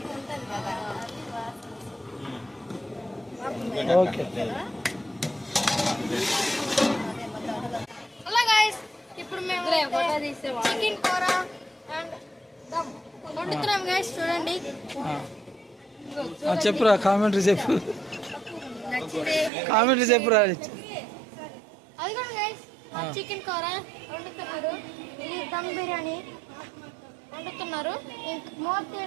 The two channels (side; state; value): left; drops out; at 19.5 s